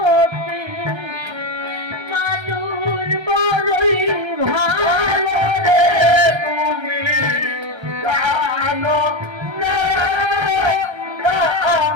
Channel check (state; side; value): late; left; 1.3 ms